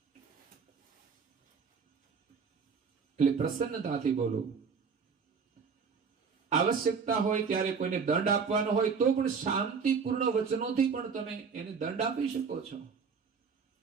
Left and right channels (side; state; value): left; quieter; 5.7 dB